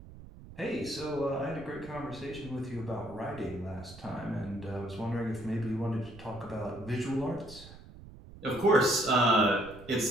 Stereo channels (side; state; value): right; noise; rumble, 17 dB below the sound